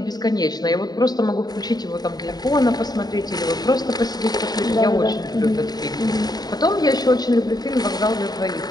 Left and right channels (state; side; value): late; right; 0.19 ms